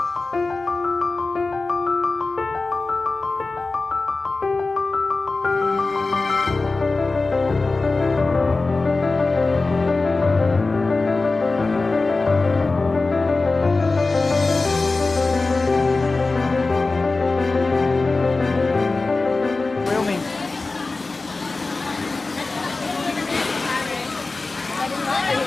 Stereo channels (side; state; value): right; quieter; 3.6 dB